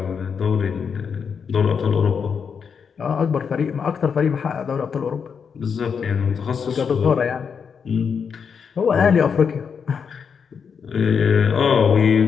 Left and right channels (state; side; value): quieter; right; 6.4 dB